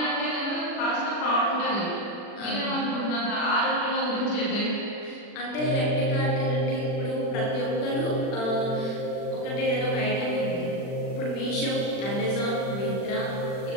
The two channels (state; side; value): late; right; 40 ms